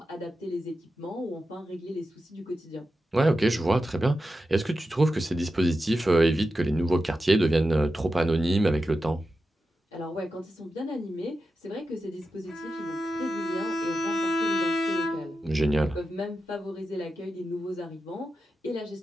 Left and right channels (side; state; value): both; normal; correlation 0.90